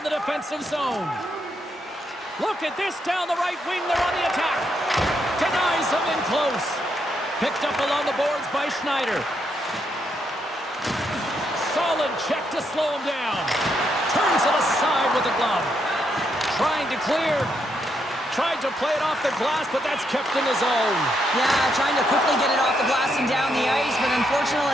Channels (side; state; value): both; normal; correlation 0.78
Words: the defensive zone. Look at this down the right wing. They're on the attack. Denies him in close. Picked up along the boards by Schneider. Solid check to slow him down. Turns it aside with the glove. Trying to clear. Tried to play it off the glass, but that's kept in his zone. Yeah, trying to quickly get it off the glass and down the ice, but